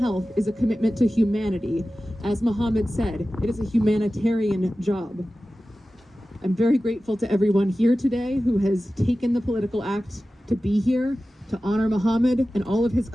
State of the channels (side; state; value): both; normal; correlation 0.95